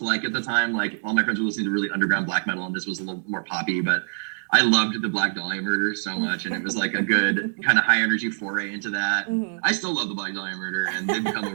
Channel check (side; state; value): left; silent; 62 dB below the other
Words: like at the time. Like, all my friends were listening to really underground black metal, and this was a little more poppy, but I loved the Black Dahlia Murder so much, and it was like a good kind of high energy foray into that. I still love the Black Dahlia Murder, and they've become a